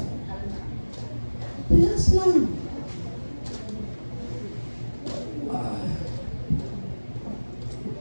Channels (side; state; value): both; inverted; correlation -1.00